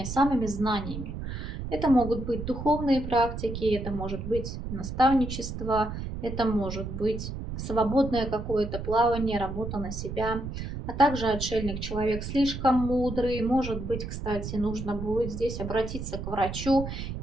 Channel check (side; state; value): right; noise; rumble, 6 dB below the sound